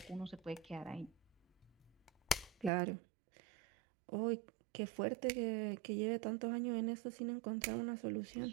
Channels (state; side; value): drops out; left; at 2.7 s